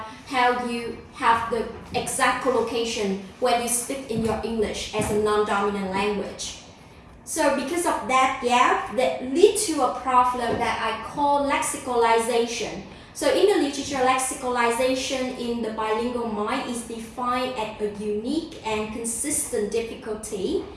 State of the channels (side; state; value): both; identical; correlation 1.00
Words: how you have the exact collocation when you speak in your English as a non-dominant language. So because of that gap, that leads to a problem that I call lexicalization. So in the literature, lexicalization in the bilingual mind is defined as a unique and consistent difficulty,